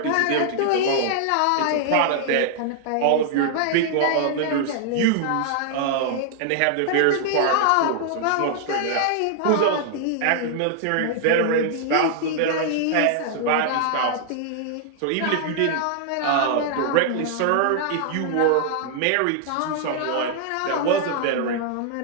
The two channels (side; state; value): both; different; correlation 0.00